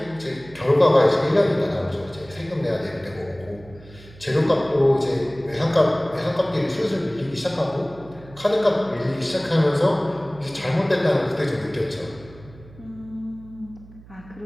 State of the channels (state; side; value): noise; right; hum, 21 dB below the sound